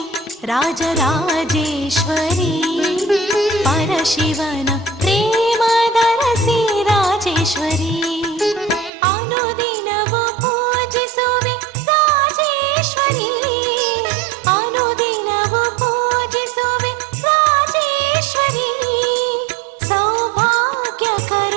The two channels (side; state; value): left; drops out; at 8.9 s